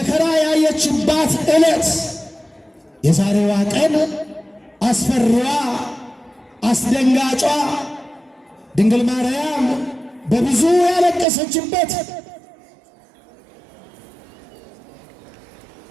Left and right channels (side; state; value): left; drops out; at 11.2 s